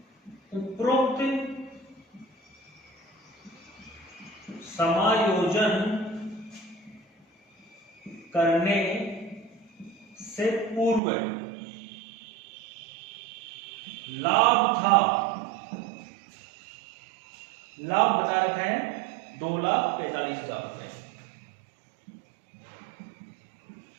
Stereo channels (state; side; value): drops out; left; at 11.0 s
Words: उपरोक्त समायोजन करने से पूर्व लाभ था, लाभ बता रखा है 2,45,000 रुपए।